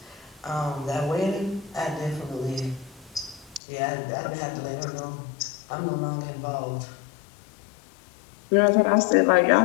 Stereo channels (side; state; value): right; drops out; at 3.6 s